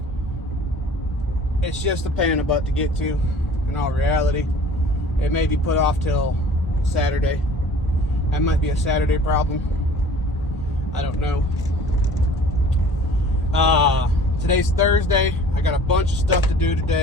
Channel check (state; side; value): normal; both; correlation 0.48